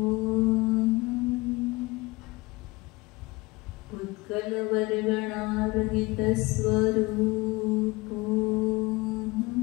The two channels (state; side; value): quieter; right; 23.0 dB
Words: उत्कल वर्गणारहित स्वरूप